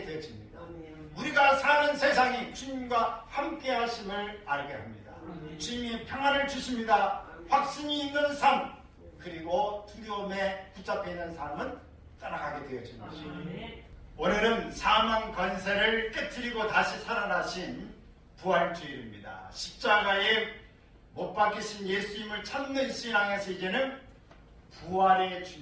되어집니다. 우리가 사는 세상이 주님과 함께 하심을 알게 합니다. 주님이 평안을 주십니다. 확신이 있는 삶, 그리고 두려움에 붙잡혀 있는 삶은 떠나가게 되어지는 것입니다. 오늘은 사망 권세를 깨뜨리고 다시 살아나신 부활주일입니다. 십자가에 못 박히신 예수님을 찾는 신앙에서 이제는 부활의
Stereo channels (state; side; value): identical; both; correlation 1.00